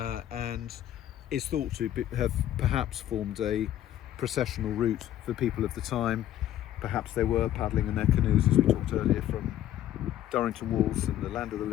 is thought to have perhaps formed a processional route for people of the time. Perhaps they were paddling in their canoes, as we talked earlier, from Durrington Walls and the land of the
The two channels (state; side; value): quieter; right; 12.2 dB